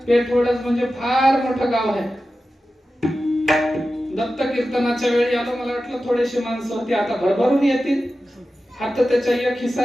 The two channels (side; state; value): both; normal; correlation 0.93